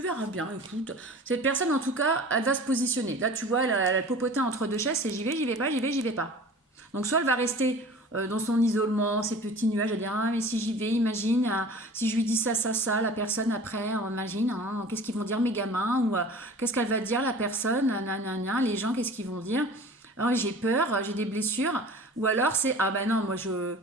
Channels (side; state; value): both; normal; correlation 0.42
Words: bien, écoute. Cette personne, en tout cas, elle va se positionner. Là, tu vois, elle a popoté entre deux chaises, c'est j'y vais pas, j'y vais pas. Donc, soit elle va rester dans son isolement, ses petits nuages, elle va dire, ah, mais si j'y vais, imagine, si je lui dis ça, la personne après, imagine, hein, qu'est-ce qu'ils vont dire mes gamins, ou qu'est-ce qu'elle va dire la personne, les gens, qu'est-ce qu'ils vont dire. Oh, j'ai peur, j'ai des blessures. Ou alors c'est, ah ben non, moi je